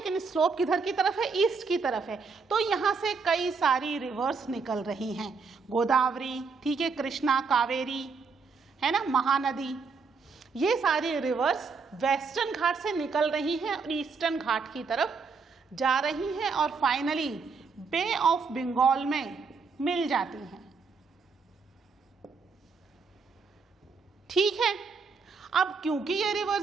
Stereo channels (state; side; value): quieter; left; 4.9 dB